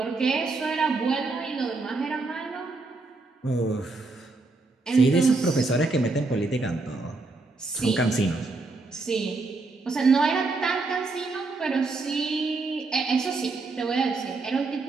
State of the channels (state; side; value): quieter; left; 3.5 dB